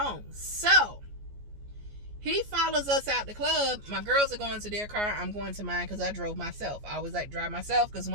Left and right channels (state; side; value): late; left; 14 ms